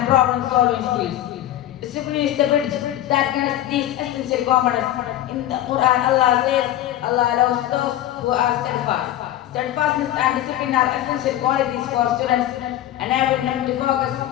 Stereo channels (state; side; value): quieter; right; 13.0 dB